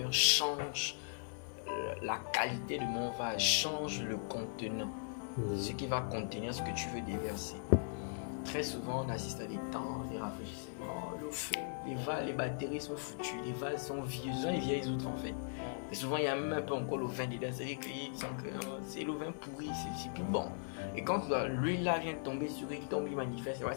change la qualité de mon vase, change le contenant. Ce qui va contenir ce que tu veux déverser. Très souvent, on assiste à des temps, des rafraîchissements, le feu, les batteries sont foutues, les vases sont vieux, ce sont les vieilles autres en fait. Et souvent, il y a même un peu encore le vin dedans, c'est-à-dire que c'est le vin pourri, c'est plus bon. Et quand l'huile là vient tomber sur lui, tombe, il manifeste,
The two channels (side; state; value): right; silent; 52 dB below the other